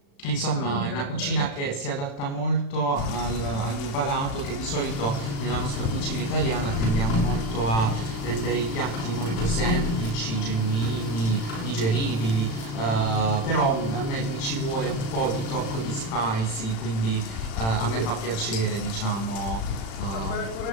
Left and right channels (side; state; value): right; late; 36 ms